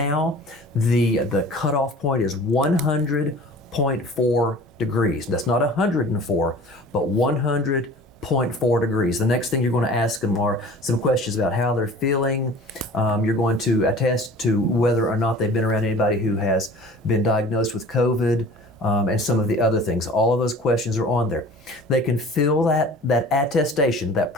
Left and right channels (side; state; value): both; normal; correlation 0.44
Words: the cutoff point is 100.4 degrees. That's not 104, but 100.4 degrees. The next thing you're going to ask them are some questions about how they're feeling. You're going to attest to whether or not they've been around anybody who has been diagnosed with COVID, and some of the other things. All of those questions are on there. They can fill that attestation, that